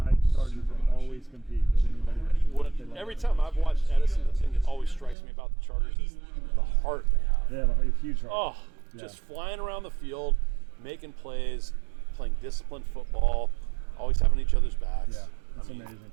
Chargers will always compete with anybody. Every time I've watched Edison, the thing that always strikes me about the Chargers is the heart they have. Yeah, a huge heart. Oh, just flying around the field, making plays, playing disciplined football, always having each other's backs. Yeah, it's amazing.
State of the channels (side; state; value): left; drops out; at 5.2 s